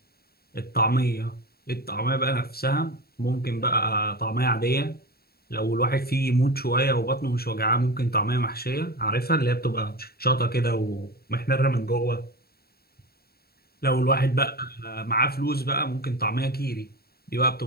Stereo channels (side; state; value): right; late; 0.45 ms